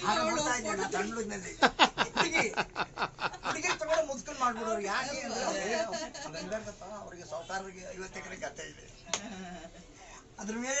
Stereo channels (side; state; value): both; identical; correlation 1.00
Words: ತಮಿಳಿನಲ್ಲಿ ಹುಡುಗಿ ತಗೊಂಡು ಮುದ್ಕೊಂಡು ಮಾಡ್ಬಿಡೋರು. ಯಾಕೆ ಅವ್ರಿಗೆ ಸಾವುಕಾರರಿಗೆ 50 ಎಕರೆ ಗದ್ದೆ ಇದೆ, ಅದ್ರ